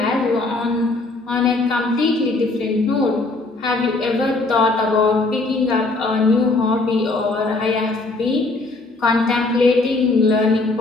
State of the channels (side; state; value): right; quieter; 3.2 dB